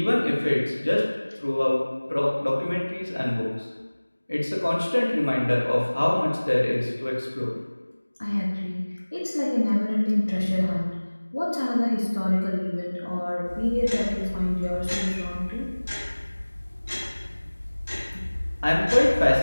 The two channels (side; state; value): both; inverted; correlation -1.00